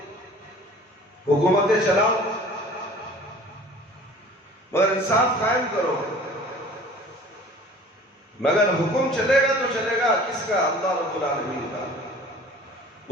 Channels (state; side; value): normal; both; correlation 0.46